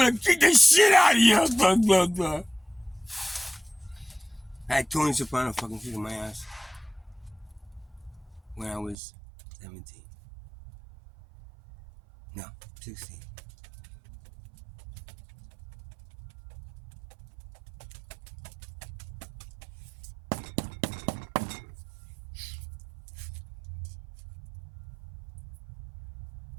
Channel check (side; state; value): left; drops out; at 9.0 s